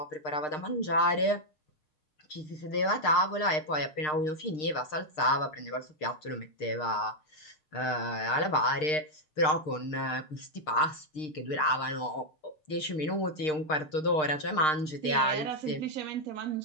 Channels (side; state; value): right; late; 6.5 ms